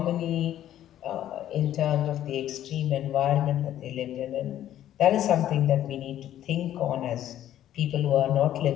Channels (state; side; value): quieter; right; 12.0 dB